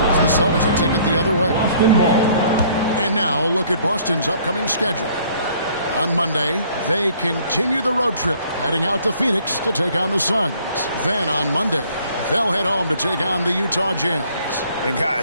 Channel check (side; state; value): both; inverted; correlation -0.58